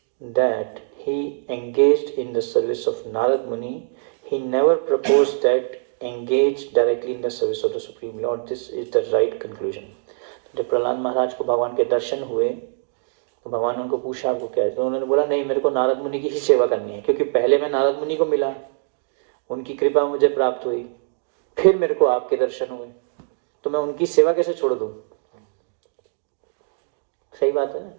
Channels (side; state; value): left; silent; digital silence